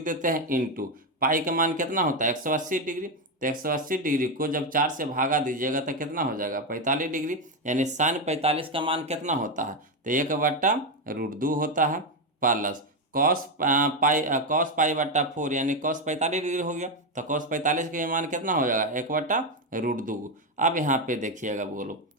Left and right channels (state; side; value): normal; both; correlation 0.09